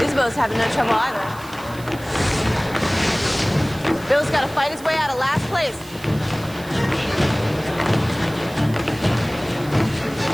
Isabeau's having no trouble either. Bill's got to fight his way out of last place.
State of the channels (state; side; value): noise; right; hiss, 19 dB below the sound